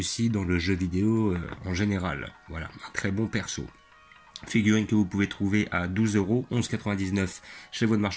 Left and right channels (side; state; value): both; identical; correlation 1.00